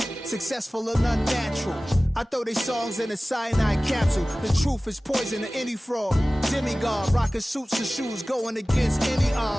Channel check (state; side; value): normal; both; correlation 0.97